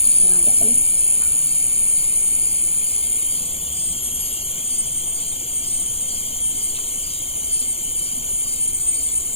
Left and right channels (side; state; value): right; late; 0.28 ms